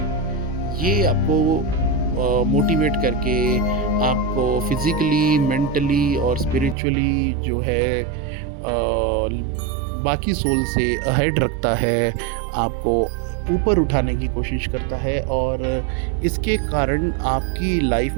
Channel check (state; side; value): drops out; left; at 6.8 s